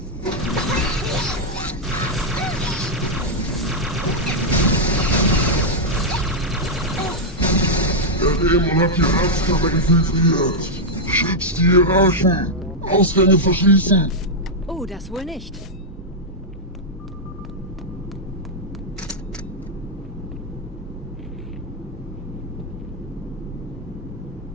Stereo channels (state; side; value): normal; both; correlation -0.03